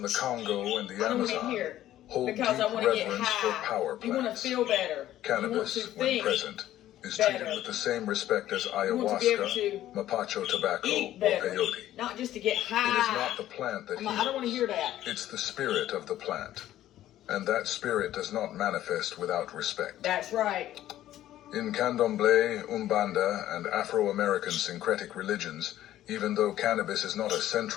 the Congo and the I don't want to Amazon, hear hold because I deep want to get reverence for high. power You want to plants. feel better. Cannabis, you want to when think present, is better. treated with the same respect as You want to be able ayahuasca, to mapacho tobacco, eat or better, peyote. not just to get It high. is not the plant that I don't want to heals. hear that. It's the spirit of the plant. And that spirit does not manifest without respect. That's right. In Candomblé, Umbanda, and Afro-American syncretic religions, even though cannabis is not a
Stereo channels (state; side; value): quieter; right; 13.2 dB